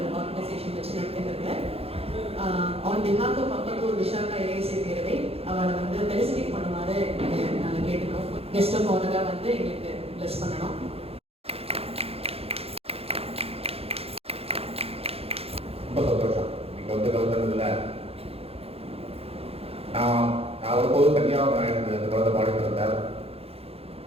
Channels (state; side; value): late; left; 0.29 ms